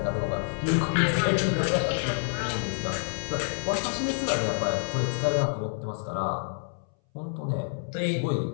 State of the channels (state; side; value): silent; right; 60 dB below the other